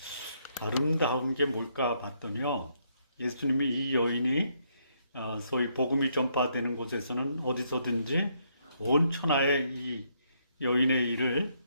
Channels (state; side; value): inverted; both; correlation -0.73